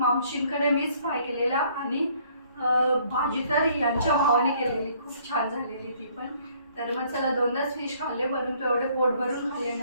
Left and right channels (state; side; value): inverted; both; correlation -0.62